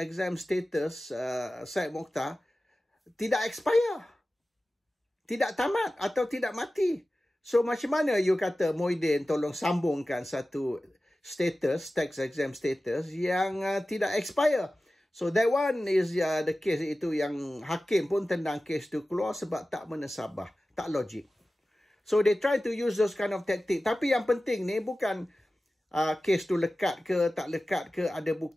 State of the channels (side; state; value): both; normal; correlation 0.96